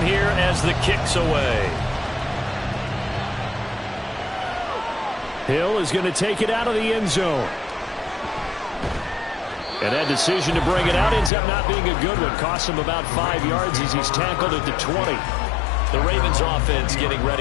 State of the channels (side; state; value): right; drops out; at 11.3 s